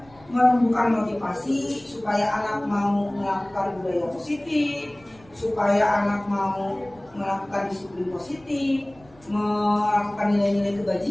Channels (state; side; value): noise; right; rumble, 27 dB below the sound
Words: menumbuhkan motivasi supaya anak mau melakukan budaya positif, supaya anak mau melakukan disiplin positif, melakukan nilai-nilai